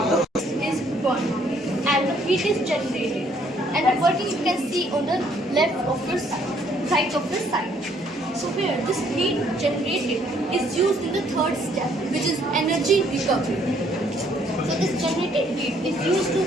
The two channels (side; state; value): both; normal; correlation 0.65